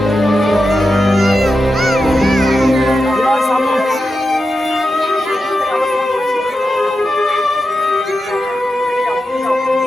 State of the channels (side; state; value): both; normal; correlation 0.89